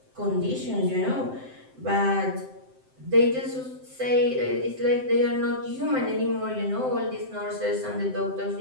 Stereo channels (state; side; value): late; left; 7.7 ms